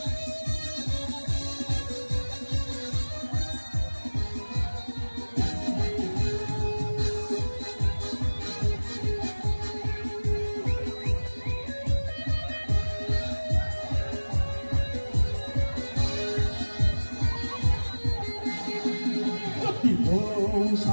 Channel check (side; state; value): both; inverted; correlation -1.00